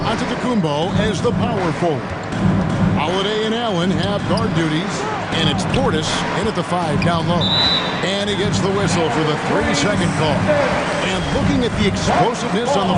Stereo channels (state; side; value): identical; both; correlation 1.00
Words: as the power forward. Holiday and Allen have guard duties, and it's Portis in at the 5 down low. And he gets the whistle for the 3-second call. And looking at the explosiveness on the